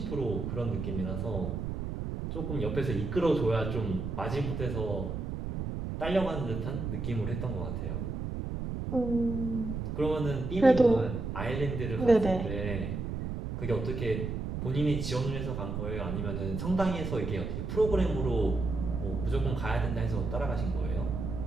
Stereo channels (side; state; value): right; noise; rumble, 4 dB below the sound